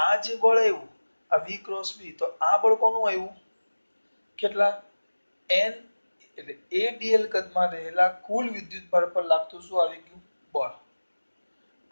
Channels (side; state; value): both; inverted; correlation -1.00